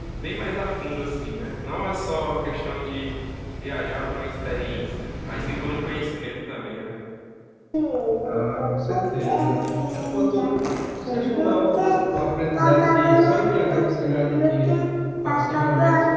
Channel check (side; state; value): both; identical; correlation 1.00